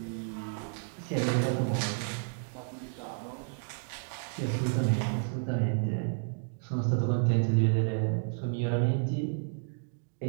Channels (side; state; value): left; silent; digital silence